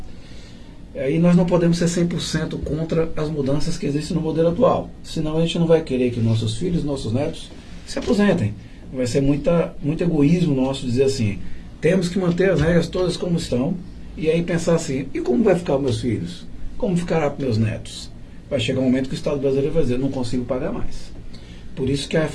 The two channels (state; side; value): identical; both; correlation 1.00